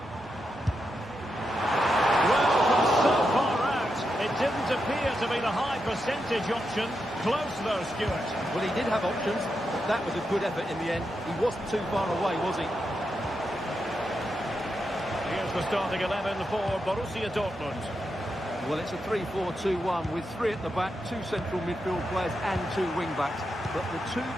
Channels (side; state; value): both; normal; correlation 0.86